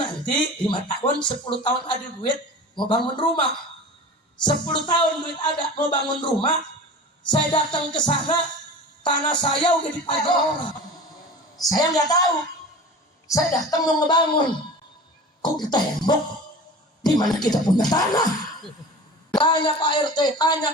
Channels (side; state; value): both; normal; correlation 0.36